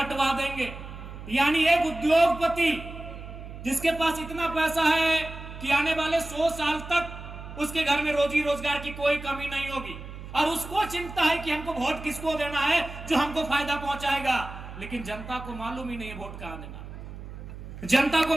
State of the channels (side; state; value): right; noise; hum, 12 dB below the sound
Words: देंगे। यानी एक उद्योगपति जिसके पास इतना पैसा है कि आने वाले 100 साल तक उसके घर में रोजी रोजगार की कोई कमी नहीं होगी, और उसको चिंता है कि हमको वोट किसको देना है जो हमको फायदा पहुंचाएगा। लेकिन जनता को मालूम ही नहीं है वोट कहां देना, जनता को